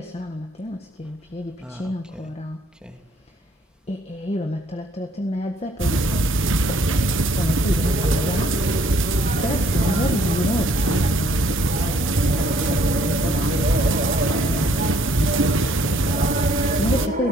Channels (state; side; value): normal; both; correlation 0.63